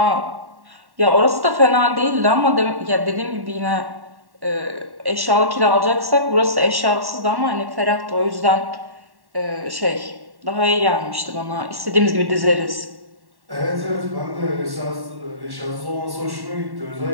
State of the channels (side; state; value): left; late; 1.1 ms